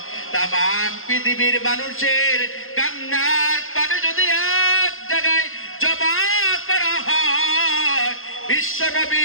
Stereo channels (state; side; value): late; right; 0.60 ms